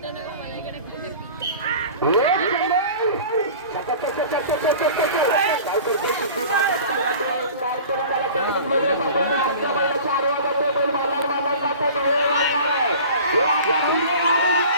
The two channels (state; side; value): inverted; both; correlation -0.41